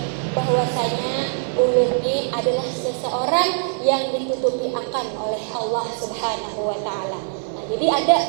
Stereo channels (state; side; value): silent; left; 55 dB below the other